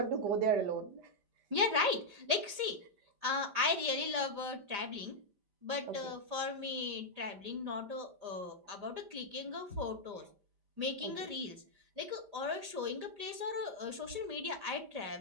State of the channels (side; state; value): left; late; 5.0 ms